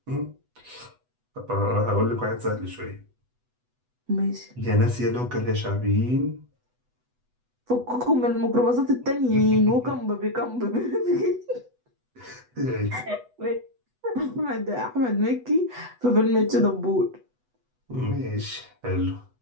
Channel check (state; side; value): late; left; 8.1 ms